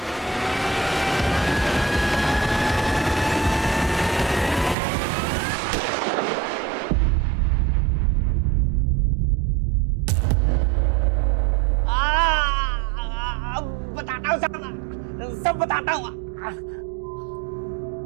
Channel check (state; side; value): drops out; left; at 4.8 s